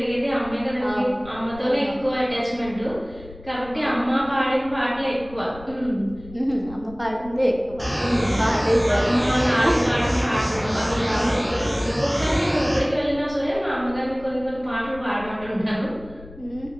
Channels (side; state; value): left; noise; rumble, 18 dB below the sound